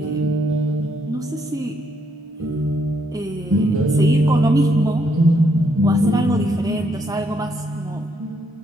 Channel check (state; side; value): normal; both; correlation 0.74